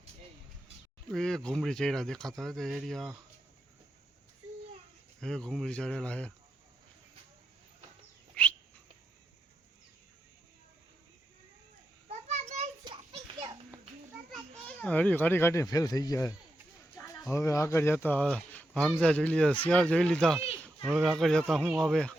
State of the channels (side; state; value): both; normal; correlation 0.86